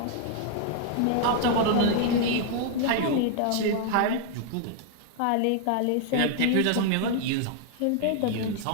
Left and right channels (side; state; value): both; different; correlation 0.00